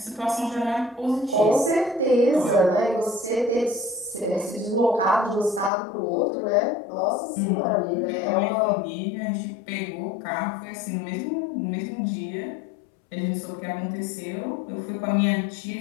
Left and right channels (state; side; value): drops out; right; at 5.7 s